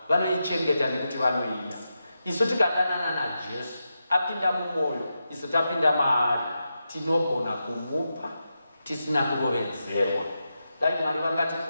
vanoichengeta nekuti vanoida. Isu tikadanana naJesu apinda mumwoyo, isu tapinda maari, tinogona kumupa tisina kurovedzerwa. Dai Mwari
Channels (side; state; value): both; inverted; correlation -0.88